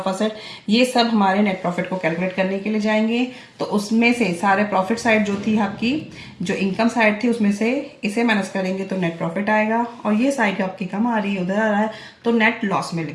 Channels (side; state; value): both; identical; correlation 1.00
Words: asset, ये सब हमारे नेट प्रॉफिट को कैलकुलेट करने के लिए जाएंगे। तो उसमें से सारे प्रॉफिट साइड जो थी आपकी, जो इनकम साइड थी, उसमें से इसे माइनस करेंगे तो नेट प्रॉफिट आएगा, और ये साइड आपकी कम आ रही है, उधर आ रहा है, तो नेट लॉस में